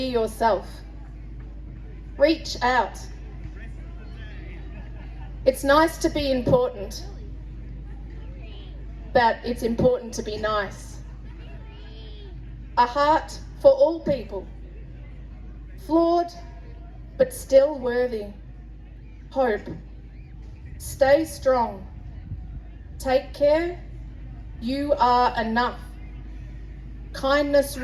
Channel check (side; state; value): both; identical; correlation 1.00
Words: yourself. Reach out. It's nice to be important, but it's important to be nice. A heart for all people. Flawed, but still worthy. Hope. Stay strong. Take care. You are enough. Kindness